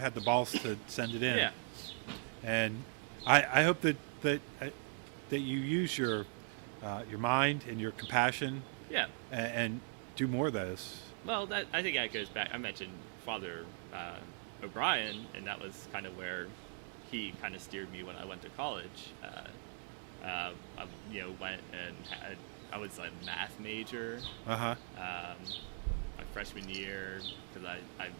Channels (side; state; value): left; silent; 51 dB below the other